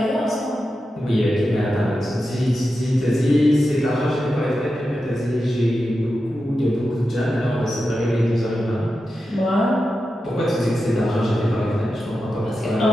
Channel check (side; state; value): both; normal; correlation 0.90